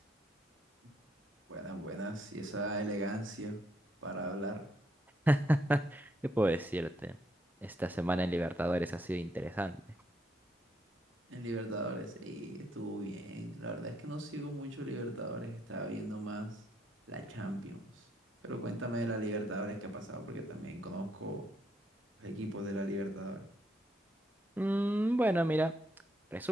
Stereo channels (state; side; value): normal; both; correlation 0.75